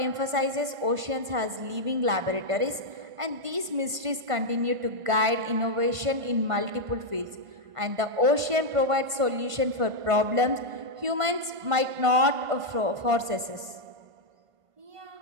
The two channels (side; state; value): left; late; 1.5 ms